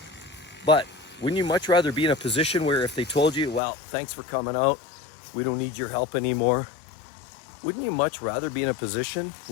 But wouldn't you much rather be in a position where if they told you, well, thanks for coming out, we don't need your help anymore. Wouldn't you much rather be in a position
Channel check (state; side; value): drops out; right; at 3.6 s